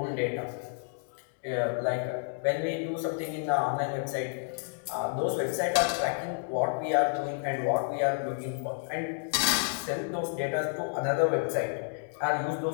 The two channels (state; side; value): silent; right; 58 dB below the other